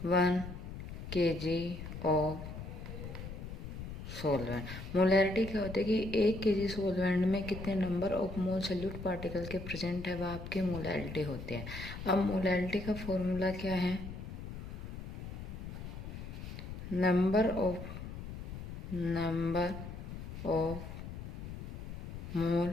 1 kg of solvent. Molarity क्या होती है कि 1 kg सोलवेंट में कितने number of mole solute particle के प्रेजेंट है, वह आपकी मोलैरिटी होती है। अब मोलैरिटी का फॉर्मूला क्या है? Number of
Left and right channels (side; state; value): left; noise; rumble, 9 dB below the sound